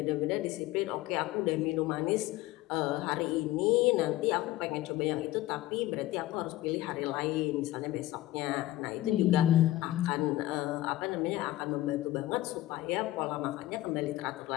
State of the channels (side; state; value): right; quieter; 16.2 dB